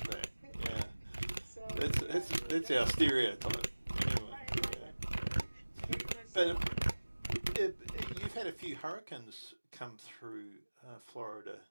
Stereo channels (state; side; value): inverted; both; correlation -1.00